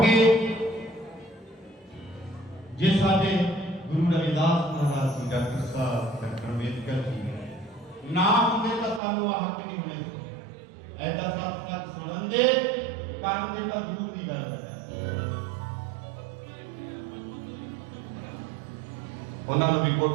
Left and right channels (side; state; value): left; drops out; at 9.0 s